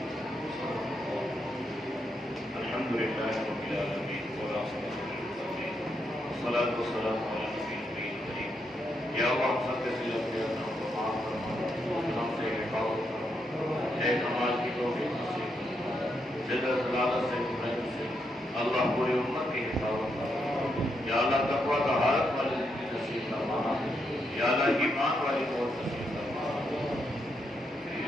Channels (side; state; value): both; normal; correlation 0.80